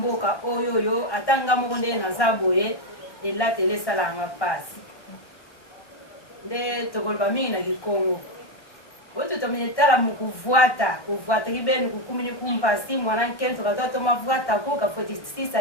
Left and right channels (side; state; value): right; late; 1.1 ms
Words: oyo ata nga moko nde naza boye elateli esalanga pasi nde tokoloba mingi na kikongo oyo totomene tala mukuvwata kibeni kukumini kumpasi mwana nkeni tokatoa tomavwata kuka